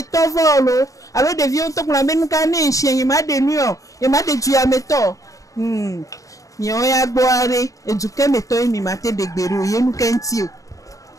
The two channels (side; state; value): right; late; 0.16 ms